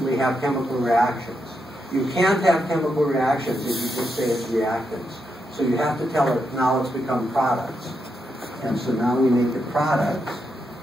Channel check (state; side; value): normal; both; correlation 0.83